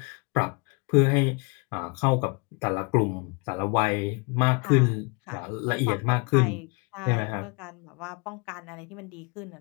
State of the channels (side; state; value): right; quieter; 32.4 dB